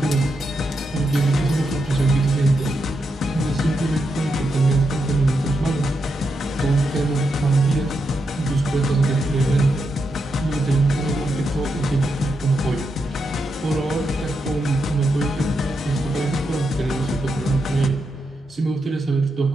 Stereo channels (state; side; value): normal; both; correlation 0.84